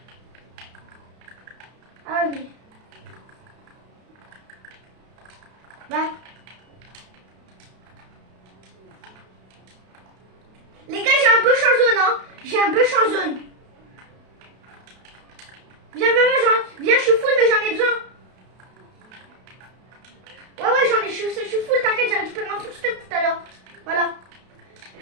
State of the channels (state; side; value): late; left; 32 ms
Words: Ah ouais, mais... Bah. Les gars, j'ai un push en zone, hein. J'ai un push en zone. Viens, viens, je suis full, mais j'en ai besoin. Ouais, je suis full, t'inquiète, j'ai récupéré un full stuff tout à l'heure. Voilà.